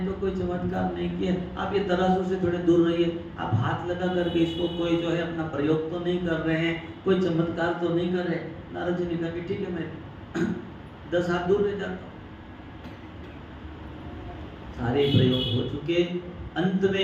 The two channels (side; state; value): both; identical; correlation 1.00